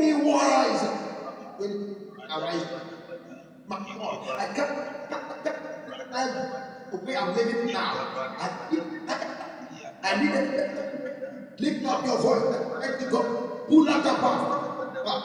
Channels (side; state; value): both; identical; correlation 1.00